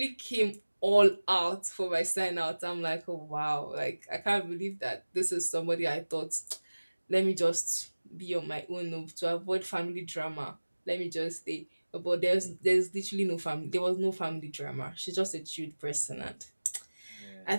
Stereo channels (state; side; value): inverted; both; correlation -1.00